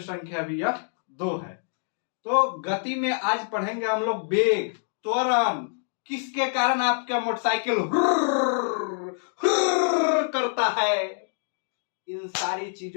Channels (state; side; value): silent; right; digital silence